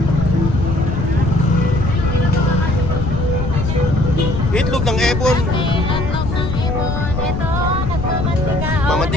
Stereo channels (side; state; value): left; noise; rumble, 3 dB below the sound